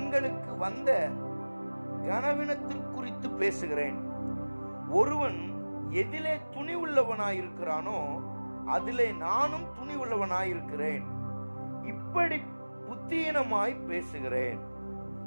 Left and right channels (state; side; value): inverted; both; correlation -1.00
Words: வந்த கனவீனத்திற்குறித்து பேசுகிறேன். ஒருவன் எதிலே துணி உள்ளவனாயிருக்கிறானோ அதிலே நானும் துணி உள்ளவனாயிருக்கிறேன். இப்படி புத்தீனமாய் பேசுகிறேன்.